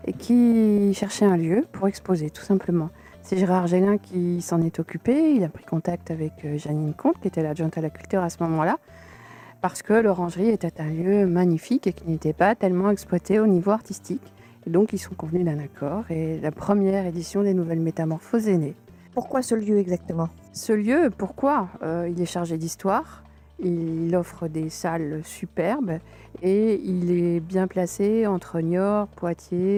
et qui cherchait un lieu pour exposer, tout simplement. C'est Gérard Gélin qui s'en est occupé. Il a pris contact avec Janine Comte, qui était l'adjointe à la culture à ce moment-là, parce que l'Orangerie était un lieu magnifique et qui n'était pas tellement exploité au niveau artistique. Et donc, ils sont convenus d'un accord et la première édition des Nouvelles Métamorphoses est née. Pourquoi ce lieu exactement? Ce lieu, pourquoi? Il est chargé d'histoire, il offre des salles superbes et il est bien placé entre Niort,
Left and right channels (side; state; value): both; identical; correlation 1.00